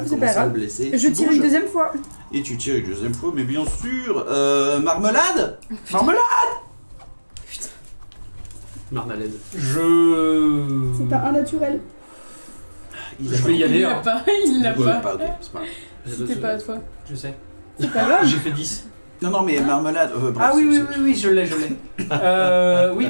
vous c'est pas commencez à grave. le blesser. Je Tu tire bouges. une deuxième fois. Et tu tires une deuxième fois, mais bien sûr. Marmelade. Marmelade. Marmalade. C'est pas un naturel. Il a Je vais y pas- aller. Il l'a hein. pas, il l'a Ouais, pas. ok, c'est pas grave. C'était pas à toi. Je sais. C'est pas grave. J'ai fait 10. Non, mais marmelade. Bref, Ah oui, c'est- oui, oui, oui, je l'ai. Oui,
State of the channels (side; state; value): both; inverted; correlation -1.00